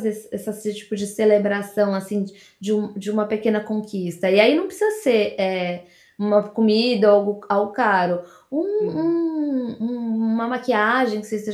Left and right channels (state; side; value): identical; both; correlation 1.00